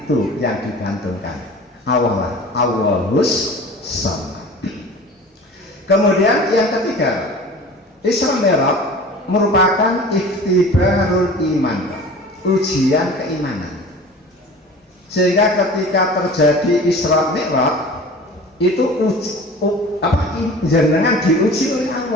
yang digantungkan, Allah, Allahus Shomad. Kemudian yang ketiga, Isra Mi'raj merupakan ikhtibarul iman, ujian keimanan. Sehingga ketika terjadi Isra Mi'raj itu jenengan diuji oleh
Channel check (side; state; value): both; normal; correlation 0.40